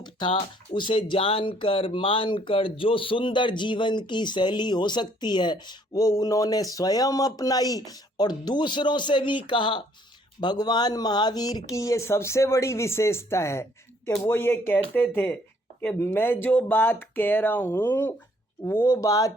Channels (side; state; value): both; normal; correlation 0.64